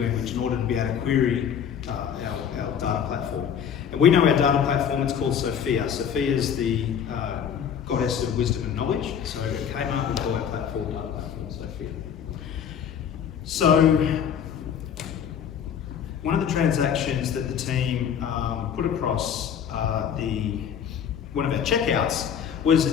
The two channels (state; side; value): quieter; right; 8.3 dB